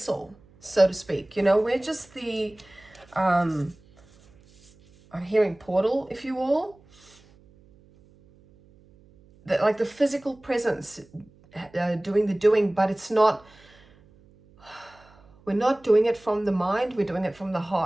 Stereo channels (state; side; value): noise; right; hum, 28 dB below the sound